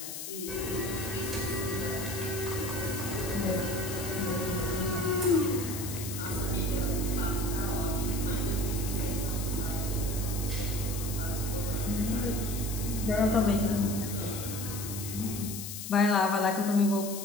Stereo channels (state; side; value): noise; left; hiss, 8 dB below the sound